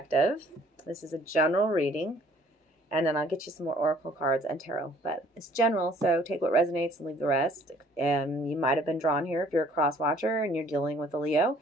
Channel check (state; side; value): normal; both; correlation 0.58